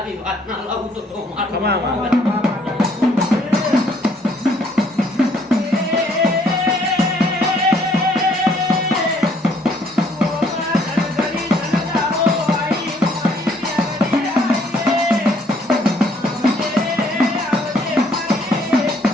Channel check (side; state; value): both; normal; correlation 0.64